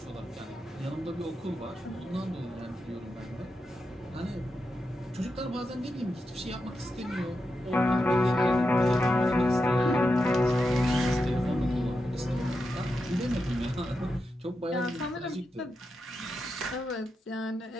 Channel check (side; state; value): both; normal; correlation 0.88